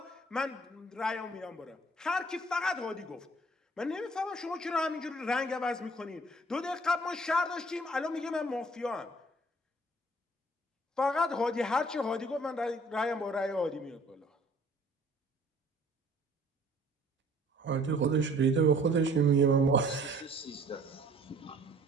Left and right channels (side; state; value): both; normal; correlation 0.55